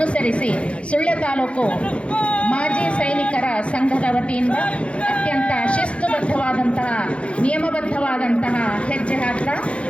ಸುಳ್ಯ ತಾಲೂಕು ಮಾಜಿ ಸೈನಿಕರ ಸಂಘದ ವತಿಯಿಂದ ಅತ್ಯಂತ ಶಿಸ್ತುಬದ್ಧವಾದಂತಹ ನಿಯಮಬದ್ಧವಾದಂತಹ ಹೆಜ್ಜೆ ಹಾಕ್ತಾ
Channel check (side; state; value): right; late; 0.060 ms